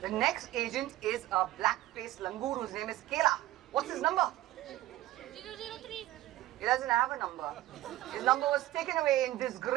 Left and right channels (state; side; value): quieter; left; 15.5 dB